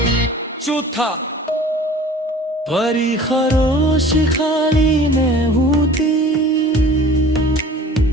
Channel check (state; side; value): normal; both; correlation 0.44